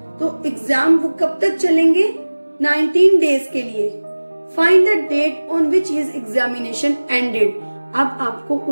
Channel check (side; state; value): both; inverted; correlation -1.00